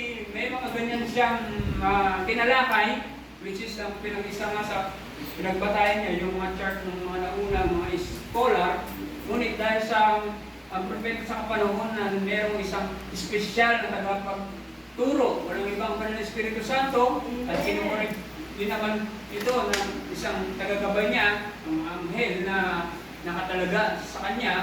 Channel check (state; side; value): identical; both; correlation 1.00